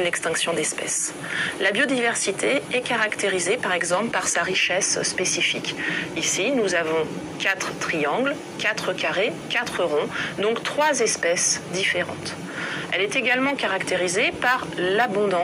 l'extinction d'espèces. La biodiversité est caractérisée par exemple par sa richesse spécifique. Ici, nous avons 4 triangles, 4 carrés, 4 ronds, donc 3 espèces différentes. Elle est également caractérisée par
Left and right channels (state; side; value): identical; both; correlation 1.00